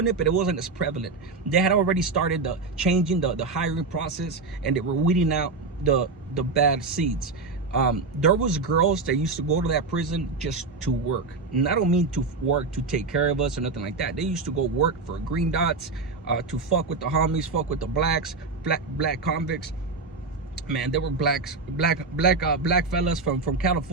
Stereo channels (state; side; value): quieter; left; 4.0 dB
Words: it, but it wasn't as prevalent. They had already started changing the hiring process, and they were weeding out the bad seeds. There was girls that used to go to that prison just to work. And I don't mean to work to take care of us or nothing like that. They used to go work for green dots, to fuck with the homies, fuck with the black convicts. Man, there were black fellas from